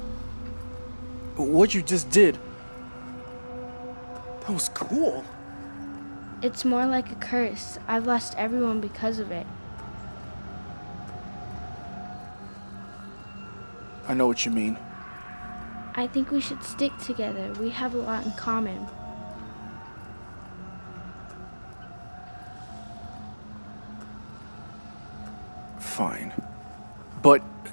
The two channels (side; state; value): both; inverted; correlation -1.00